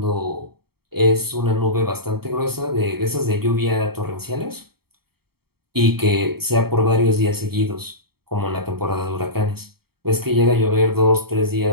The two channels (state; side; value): late; left; 0.95 ms